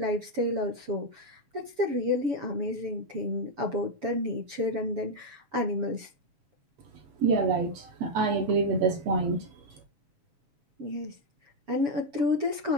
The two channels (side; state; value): left; late; 7.0 ms